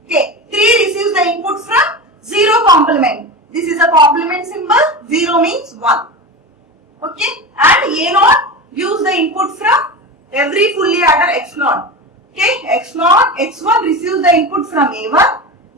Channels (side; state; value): both; normal; correlation 0.25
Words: Okay, 3 receives the input from 0 complement. This is a complement symbol. 0 means 1. Okay, and A0 gives the input from every fully adder X0. Okay, X0, X1 receives the input from A1.